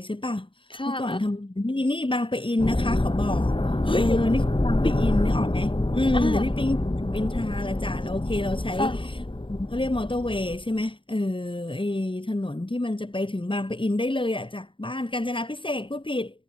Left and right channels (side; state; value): right; late; 0.25 ms